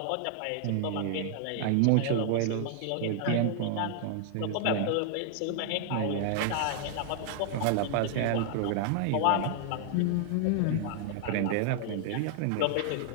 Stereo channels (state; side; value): different; both; correlation 0.00